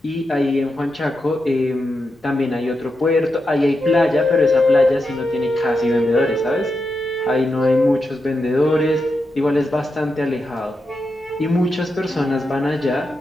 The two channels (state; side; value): normal; both; correlation 0.87